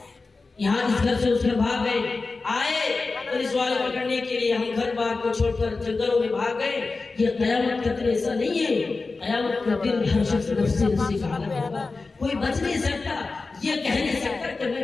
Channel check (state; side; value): quieter; right; 3.9 dB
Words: یہاں اس گھر سے اس گھر بھاگ گئے، آئے پولیس والے پکڑنے کے لیے، ہم گھر بار کو چھوڑ کر جنگلوں میں بھاگ گئے۔ یہ قیامت کا دن ایسا نہیں ہے، قیامت کا دن ہر شخص نفسی کا عالم ہوگا، کوئی بچ نہیں سکتا، یہ کہہ نہیں سکتا کہ